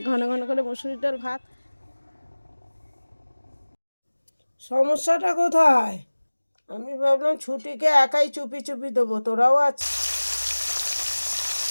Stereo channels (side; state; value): both; inverted; correlation -1.00